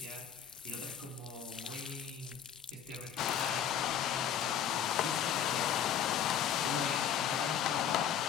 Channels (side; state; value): right; quieter; 9.1 dB